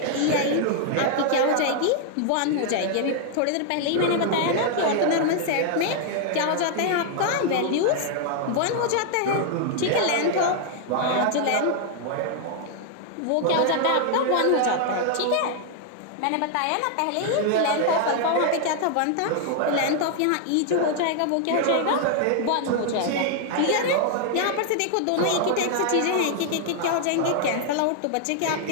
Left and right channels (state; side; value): different; both; correlation 0.00